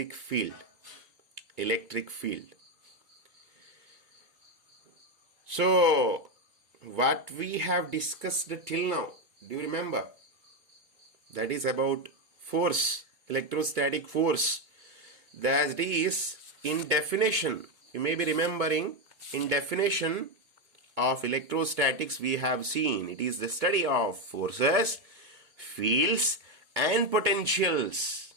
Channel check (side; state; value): left; late; 2.2 ms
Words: field. So what we have discussed till now, do you remember? That is about force, electrostatic force. That is, in definition, you may be remembering, in definition of electrostatics we have seen, it is the study of forces, fields and potentials